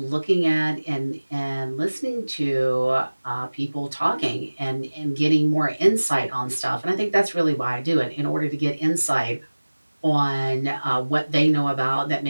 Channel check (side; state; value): both; inverted; correlation -1.00